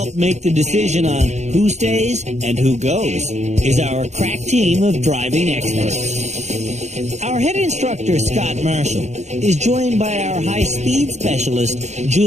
make the decision on who stays and who goes is our crack team of driving experts. Our head instructor, Scott Marshall, is joined by our high-speed specialist,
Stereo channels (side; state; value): left; late; 0.33 ms